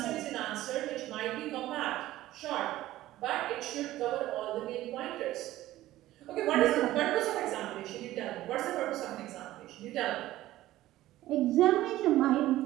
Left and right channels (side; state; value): left; quieter; 15.3 dB